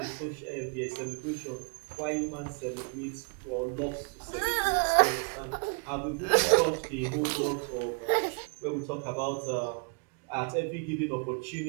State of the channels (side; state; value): left; quieter; 37.3 dB